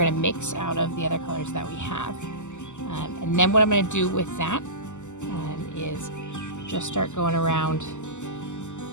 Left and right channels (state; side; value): late; right; 0.84 ms